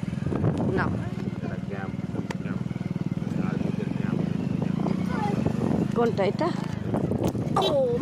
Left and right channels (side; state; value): both; identical; correlation 1.00